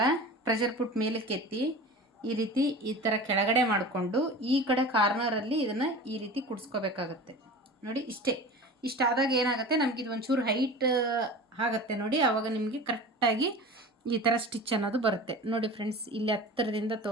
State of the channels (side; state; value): both; normal; correlation 0.35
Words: ಪ್ರೆಷರ್ ಪುಟ್ ಮೇಲಕ್ಕೆ ಎತ್ತಿ ಈ ರೀತಿ ಈ ಥರ ಕೆಳಗಡೆ ಮಾಡಿಕೊಂಡು ಈ ಕಡೆ ಕಾರ್ನರಲ್ಲಿ ಇದನ್ನು ಈ ರೀತಿ ಕುಡಿಸ್ಕೋಬೇಕಾಗತ್ತೆ. ನೋಡಿ ಇಷ್ಟಾದಾಗ ಏನಾಗುತ್ತೆ, ನಮಗಿದು ಒಂಚೂರು ಹೈಟ್ ಆಗುತ್ತೆ ನೋಡಿ, ಆವಾಗ ನಿಮಗೆ ಕರೆಕ್ಟಾಗಿ ಈ ಥರ ಸ್ಟಿಚ್ ಅನ್ನೋದು ಬರುತ್ತೆ. ನೋಡಿ ಫ್ರೆಂಡ್ಸ್, ಇಲ್ಲಿ ಹತ್ತಿರದಿಂದ